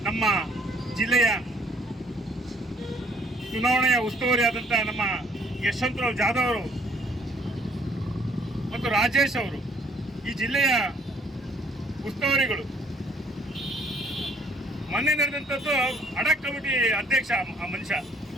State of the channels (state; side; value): normal; both; correlation 0.60